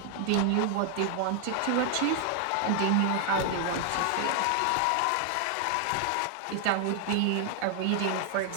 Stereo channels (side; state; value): both; different; correlation 0.00